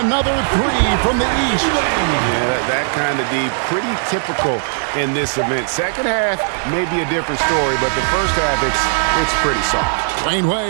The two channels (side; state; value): left; silent; digital silence